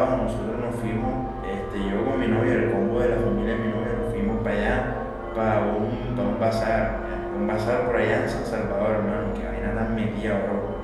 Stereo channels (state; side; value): identical; both; correlation 1.00